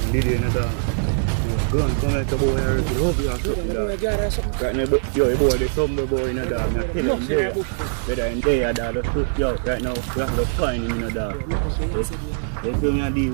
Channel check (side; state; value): left; silent; digital silence